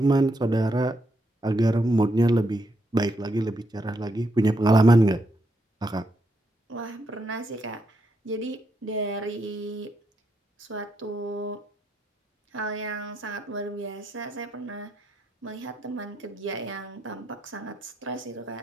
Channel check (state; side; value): normal; both; correlation 0.79